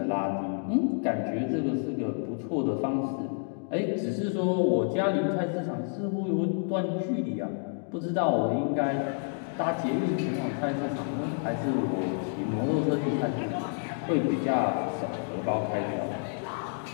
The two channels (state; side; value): silent; right; 58 dB below the other